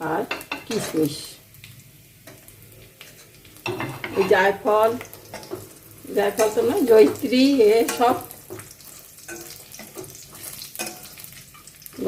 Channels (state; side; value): identical; both; correlation 1.00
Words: আর কিশমিশ, এই জায়ফল তো না, জয়িত্রী, এ সব